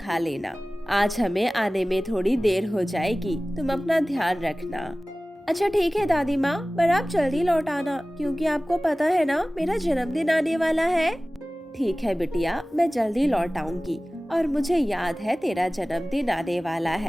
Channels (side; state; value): both; normal; correlation 0.98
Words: लेना। आज हमें आने में थोड़ी देर हो जाएगी, तुम अपना ध्यान रखना। अच्छा ठीक है दादी माँ, पर आप जल्दी लौट आना, क्योंकि आपको पता है ना मेरा जन्मदिन आने वाला है। ठीक है बिटिया, मैं जल्दी लौट आऊंगी। और मुझे याद है तेरा जन्मदिन आने वाला